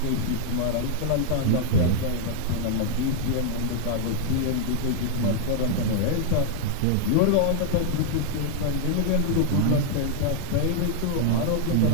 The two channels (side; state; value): both; different; correlation -0.01